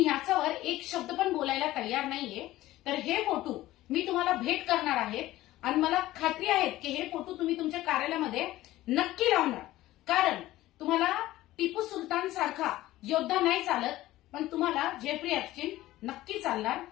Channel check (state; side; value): quieter; right; 16.1 dB